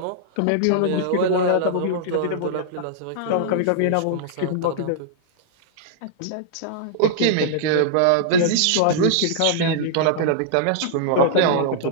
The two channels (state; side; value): different; both; correlation -0.02